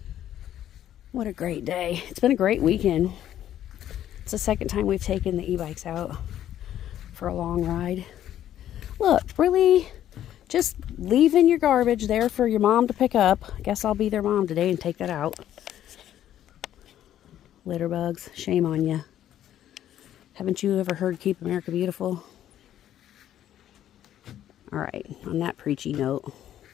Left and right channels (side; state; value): right; quieter; 11.5 dB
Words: What a great day. It's been a great weekend. It's the second time we've taken the e-bikes out for a long ride. Look, really, just leaving your garbage there for your mom to pick up. I guess I'll be their mom today and take that out. Litter bugs, shame on you. Haven't you ever heard Keep America Beautiful? All right, on that preachy note,